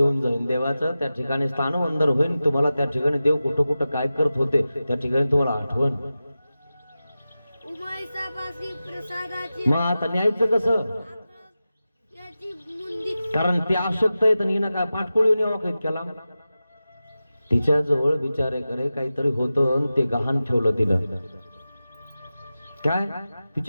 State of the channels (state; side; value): inverted; both; correlation -0.94